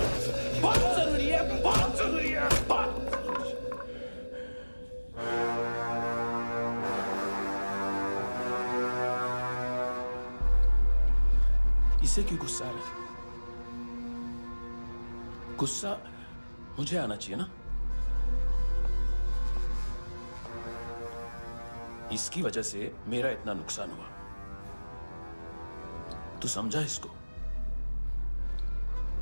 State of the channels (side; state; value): both; inverted; correlation -1.00